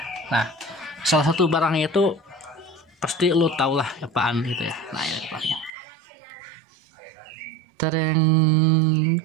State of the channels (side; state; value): left; drops out; at 5.7 s